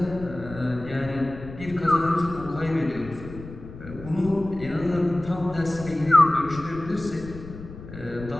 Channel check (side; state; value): left; noise; rumble, 14 dB below the sound